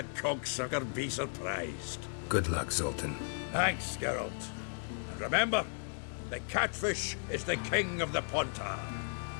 cocksucker be surprised? Good luck, Zoltan. Thanks, Geralt. And remember, the catfish is the king of the Pontar.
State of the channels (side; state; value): right; silent; digital silence